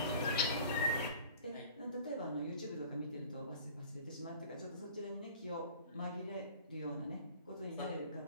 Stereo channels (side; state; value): both; inverted; correlation -0.45